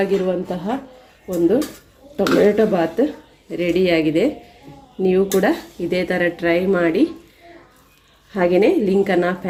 ಒಂದು ಟೊಮೆಟೊ ಬಾತ್ ರೆಡಿಯಾಗಿದೆ. ನೀವು ಕೂಡ ಇದೇ ಥರ ಟ್ರೈ ಮಾಡಿ. ಹಾಗೆಯೇ ಲಿಂಕನ್ನು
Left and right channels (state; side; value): identical; both; correlation 1.00